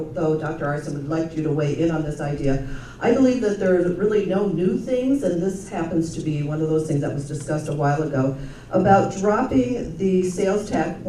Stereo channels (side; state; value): both; identical; correlation 1.00